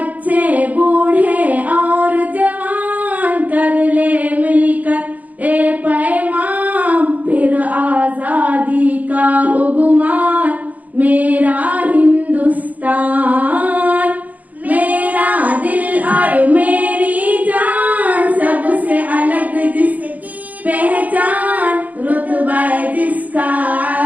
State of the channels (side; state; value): left; late; 0.077 ms